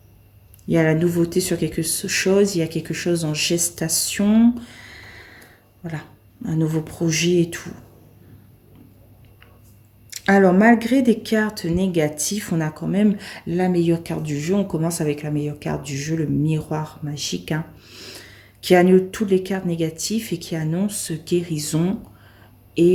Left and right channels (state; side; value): identical; both; correlation 1.00